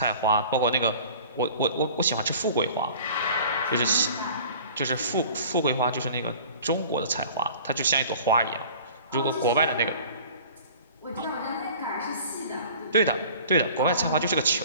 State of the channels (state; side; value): inverted; both; correlation -0.45